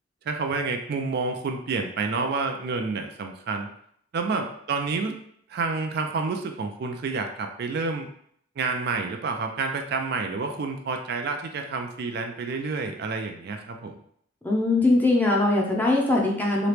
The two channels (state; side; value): normal; both; correlation 0.43